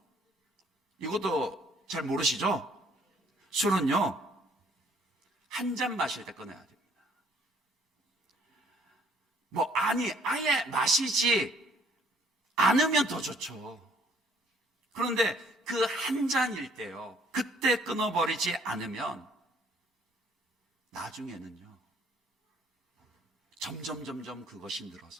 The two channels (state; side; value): normal; both; correlation 0.62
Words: 이것도 잘 모르시죠? 술은요, 한 잔 마실 때 끊어야 됩니다. 아예 마시지 않으면 더 좋죠. 그런데 그 한 잔일 때요, 그때 끊어버리지 않으면 나중에는요, 점점 그것이